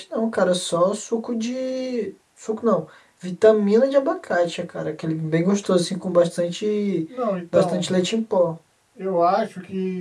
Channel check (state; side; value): identical; both; correlation 1.00